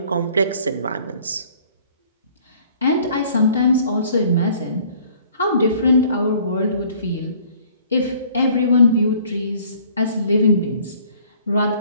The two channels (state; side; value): inverted; both; correlation -0.56